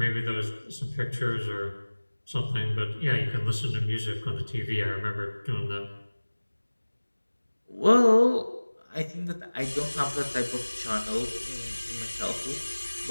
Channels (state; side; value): inverted; both; correlation -1.00